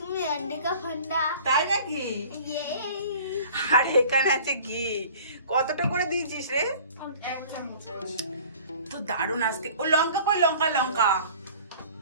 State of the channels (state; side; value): inverted; both; correlation -0.46